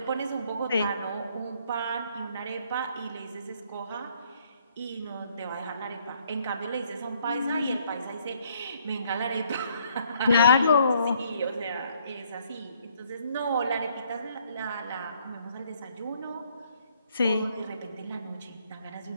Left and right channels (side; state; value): both; inverted; correlation -0.66